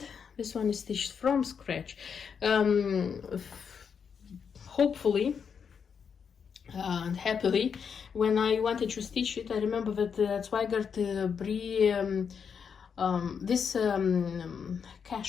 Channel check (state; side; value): quieter; right; 6.7 dB